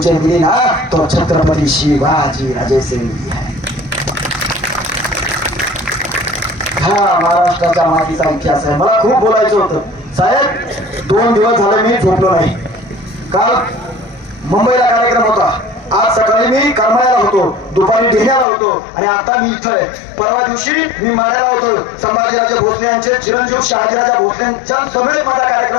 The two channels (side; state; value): right; drops out; at 18.4 s